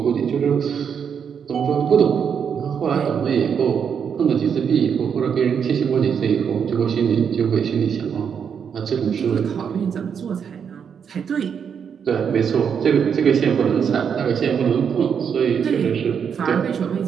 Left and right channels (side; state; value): left; quieter; 7.3 dB